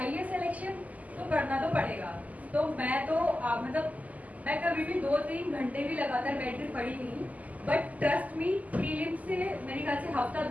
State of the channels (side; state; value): left; late; 0.076 ms